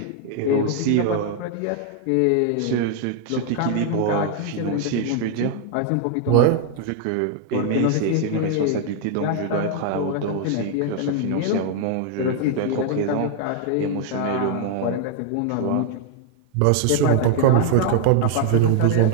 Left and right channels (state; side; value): different; both; correlation 0.00